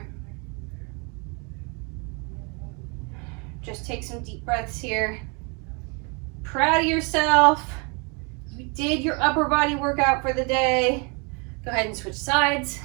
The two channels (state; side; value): quieter; left; 32.9 dB